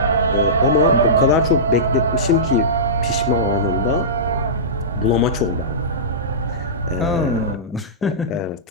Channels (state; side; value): normal; both; correlation -0.19